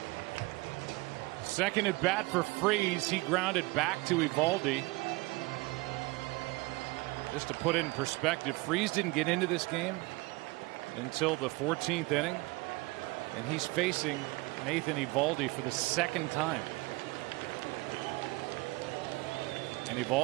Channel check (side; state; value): left; quieter; 23.4 dB